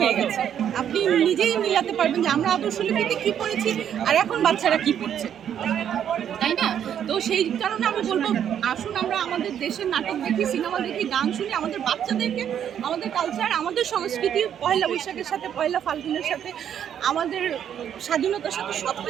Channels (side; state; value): left; quieter; 9.3 dB